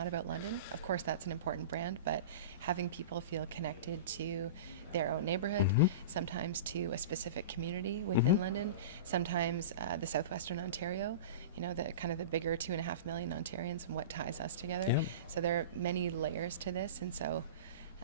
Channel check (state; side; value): inverted; both; correlation -0.30